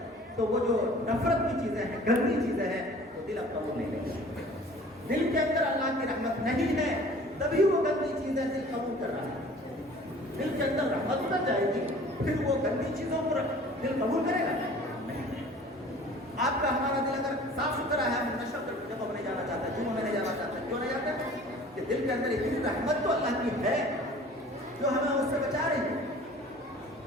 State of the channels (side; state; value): both; normal; correlation 0.47